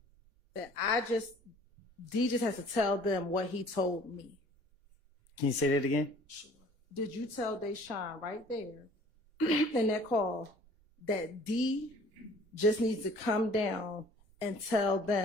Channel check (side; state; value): left; late; 1.5 ms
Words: that D just has to tell them what he told me? Can you say that again? Did you tell Deshaun right there in that call that D just needs to come down and tell